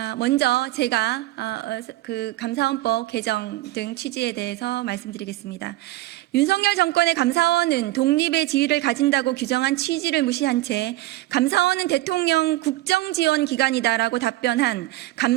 먼저 제가 그 감사원법 개정 등 취지에 대해서 말씀드리겠습니다. 윤석열 정권의 감사원은 독립의 지위를 가진다고 규정한 취지를 무시한 채 감사원은 대통령 국정지원 기관이다라고 답변한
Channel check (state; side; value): quieter; left; 17.0 dB